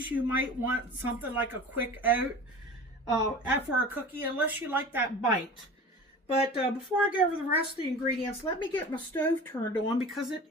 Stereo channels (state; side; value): normal; both; correlation 0.37